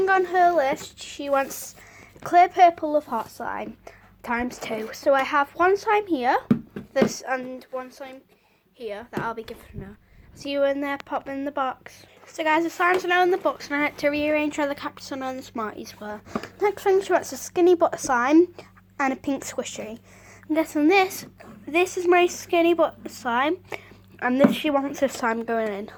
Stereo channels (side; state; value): both; identical; correlation 1.00